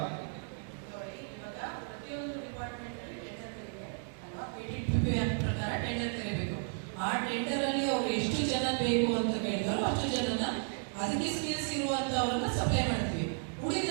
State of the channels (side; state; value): left; silent; 55 dB below the other